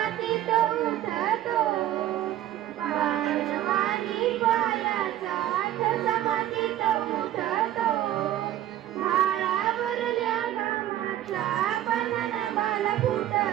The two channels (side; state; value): left; quieter; 12.7 dB